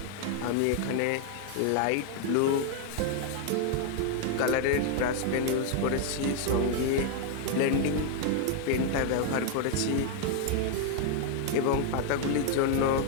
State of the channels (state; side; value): different; both; correlation 0.00